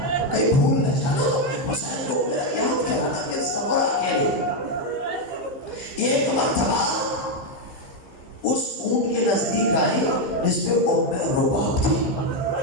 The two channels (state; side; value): late; right; 16 ms